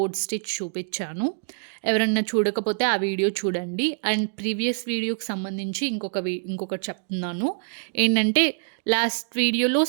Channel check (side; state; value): left; silent; digital silence